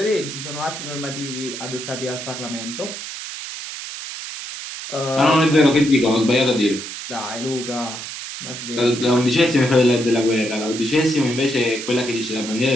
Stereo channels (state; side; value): noise; right; hiss, 9 dB below the sound